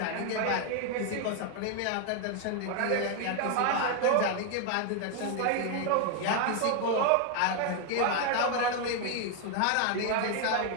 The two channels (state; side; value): different; both; correlation 0.01